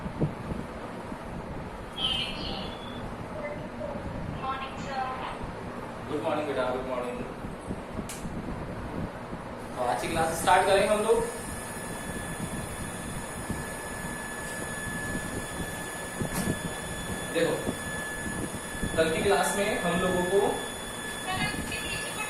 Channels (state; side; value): identical; both; correlation 1.00